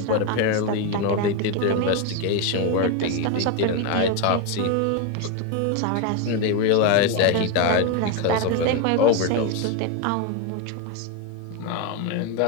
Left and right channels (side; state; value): both; different; correlation 0.02